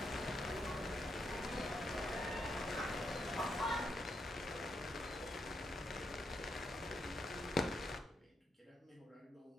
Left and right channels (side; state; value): both; normal; correlation 0.80